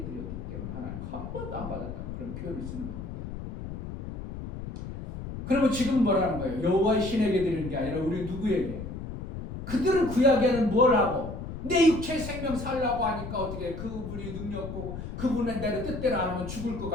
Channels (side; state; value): left; noise; rumble, 8 dB below the sound